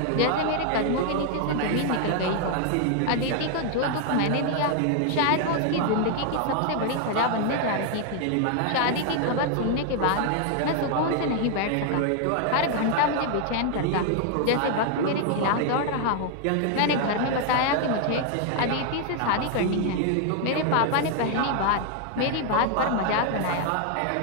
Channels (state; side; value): different; both; correlation 0.00